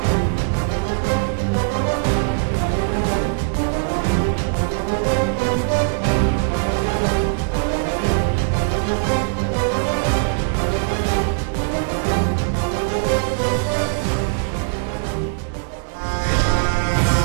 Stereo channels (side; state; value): left; silent; digital silence